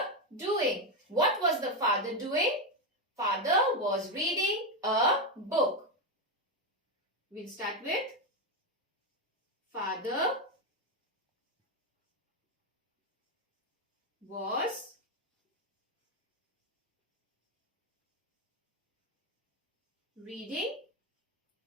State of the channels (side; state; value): both; normal; correlation 0.08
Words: doing? What was the father doing? Father was reading a book. We'll start with father was reading